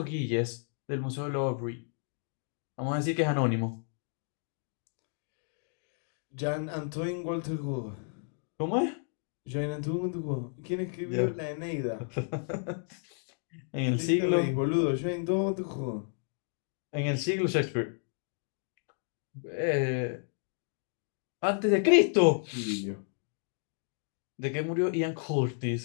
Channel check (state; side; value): silent; right; 56 dB below the other